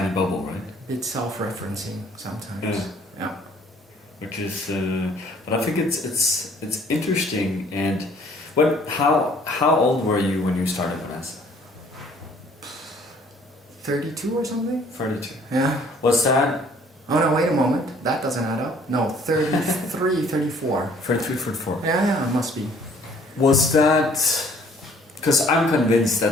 bubble, right? It's self-referencing sometimes. Yeah. Which is, but I think it's interesting. And how old were you when you started Bonanza? 32 or something? 32. Yeah. Was that? Oh no, wait a moment. That doesn't add up. No, 33, 34. 33, 34. Yeah, it must be. Was that? Because I'm convinced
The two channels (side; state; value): both; normal; correlation 0.58